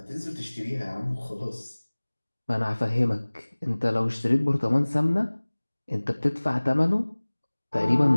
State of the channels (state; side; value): inverted; both; correlation -1.00